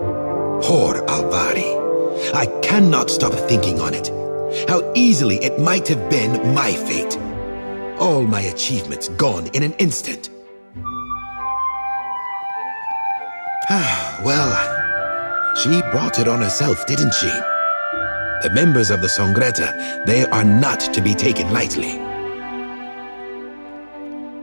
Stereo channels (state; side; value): inverted; both; correlation -1.00